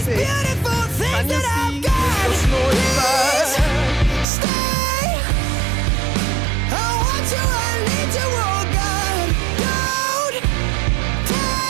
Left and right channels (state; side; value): drops out; left; at 4.2 s